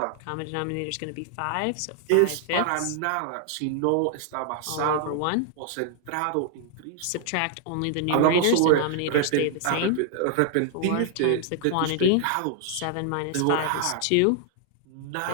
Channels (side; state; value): both; different; correlation 0.00